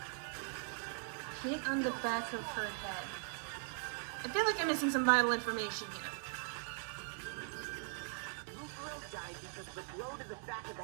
Hit on the back of her head. I feel like I'm missing some vital information here. Mukuro died because of the blow to the back of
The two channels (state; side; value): silent; left; 51 dB below the other